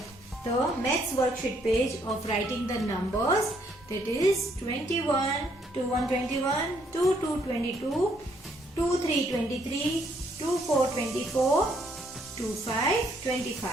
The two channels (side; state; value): both; normal; correlation 0.70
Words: the maths worksheet page of writing the numbers, that is 21 to 121, 2 to 22, 2 3 23, 2 4 24, 2 5 25.